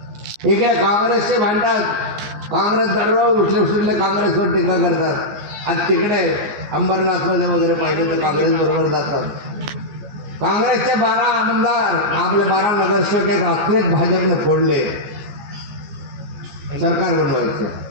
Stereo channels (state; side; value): late; left; 14 ms